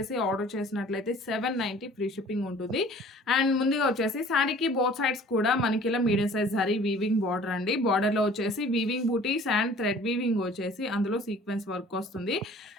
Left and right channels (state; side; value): normal; both; correlation 0.50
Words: ఆర్డర్ చేసినట్లయితే 790 ఫ్రీ షిప్పింగ్ ఉంటుంది. అండ్ ముందుగా వచ్చేసి శారీకి బోత్ సైడ్స్ కూడా మనకి ఇలా medium size zari weaving border అండి. బార్డర్లో వచ్చేసి వీవింగ్ బూటీస్ అండ్ థ్రెడ్ వీవింగ్ వచ్చేసి అందులో సీక్వెన్స్ వర్క్ వస్తుంది.